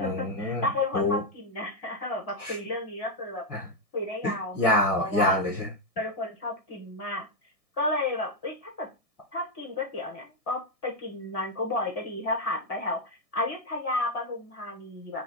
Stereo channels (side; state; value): right; late; 1.6 ms